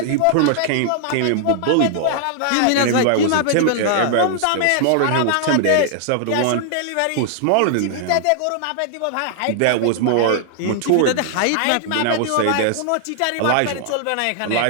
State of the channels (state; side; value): different; both; correlation 0.00